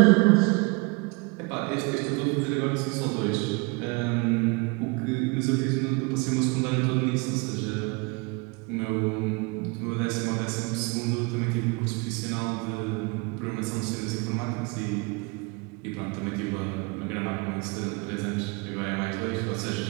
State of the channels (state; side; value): quieter; left; 28.6 dB